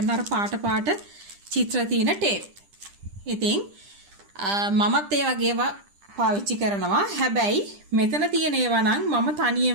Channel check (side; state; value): left; late; 10 ms